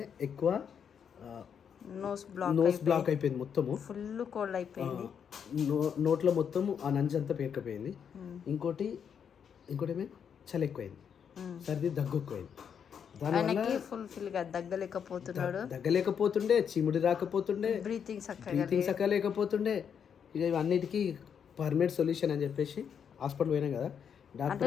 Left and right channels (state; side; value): quieter; right; 7.6 dB